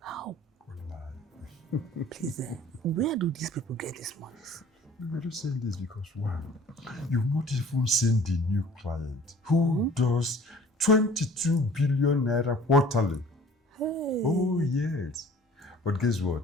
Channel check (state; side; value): normal; both; correlation 0.50